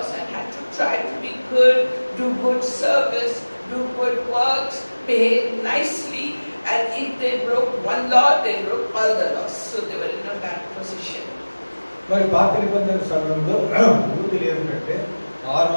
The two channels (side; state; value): both; inverted; correlation -1.00